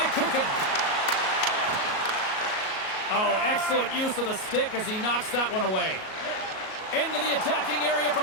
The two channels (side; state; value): right; late; 38 ms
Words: Kuffner. Oh, excellent use of the stick as he knocks that one away. Into the attacking area from